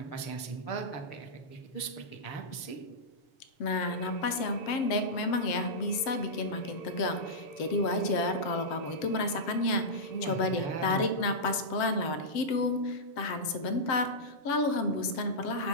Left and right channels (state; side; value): late; right; 7.6 ms